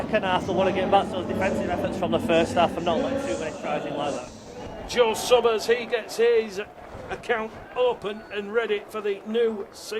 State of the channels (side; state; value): both; identical; correlation 1.00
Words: half. They want to get back to those defensive efforts from the first half and not let too many tries in like that. Joe Summers, he gets his account open and ready for the new